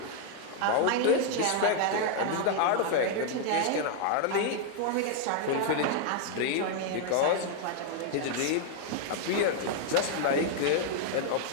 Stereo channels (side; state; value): both; different; correlation 0.00